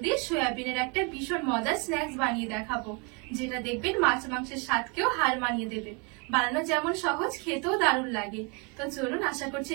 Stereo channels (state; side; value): quieter; left; 32.2 dB